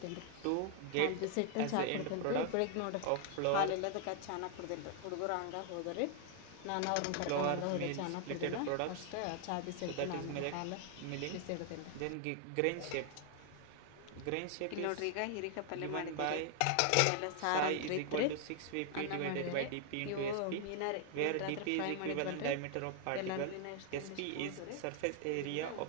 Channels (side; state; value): both; different; correlation 0.00